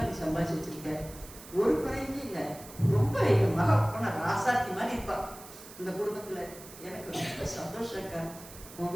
நீ சம்பாதிச்சு வச்சிருக்க, ஒரு குறையுமே இல்லை, ரொம்ப என் மக போன ராசாத்தி மாதிரி இருப்பா இந்த குடும்பத்துல, எனக்கு ரொம்ப சந்தோஷம் இருக்கா, உன்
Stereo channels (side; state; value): right; noise; hiss, 17 dB below the sound